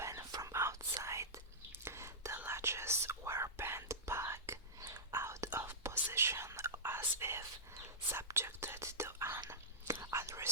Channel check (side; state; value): both; normal; correlation -0.13